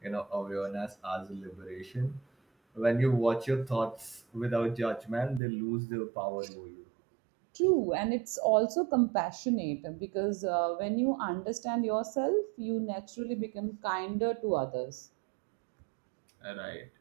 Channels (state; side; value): drops out; left; at 5.4 s